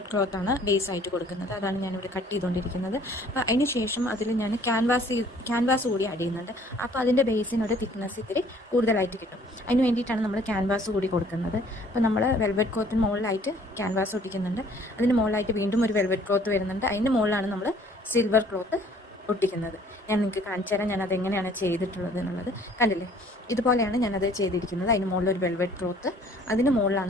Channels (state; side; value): normal; both; correlation 0.57